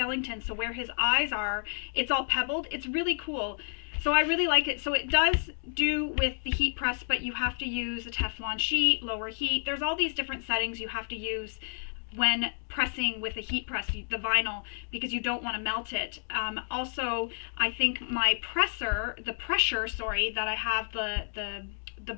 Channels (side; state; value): right; silent; digital silence